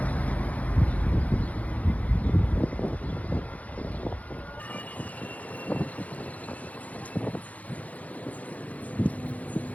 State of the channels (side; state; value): right; late; 0.071 ms